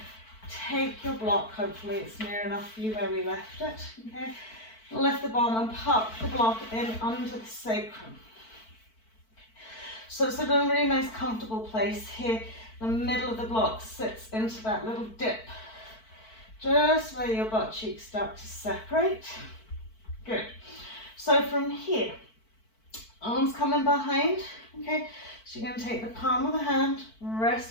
Take your block, hopefully it's near enough for you where we left it. Okay. Lift the bottom and pop the block in under the sacrum. So it's a really nice comfortable place here. The middle of the block sits into that little dip, just where your butt cheeks start to separate. Good. So from here, arms coming behind, okay? So you're going to take the palm of the hand,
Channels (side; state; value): right; late; 4.5 ms